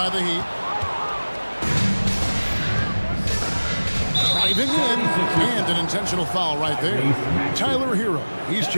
the Heat. Driving in. And an intentional foul right there. Tyler Hero. He's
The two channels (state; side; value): inverted; both; correlation -1.00